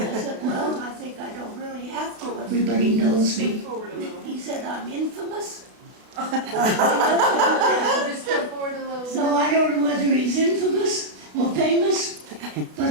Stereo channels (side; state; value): left; late; 32 ms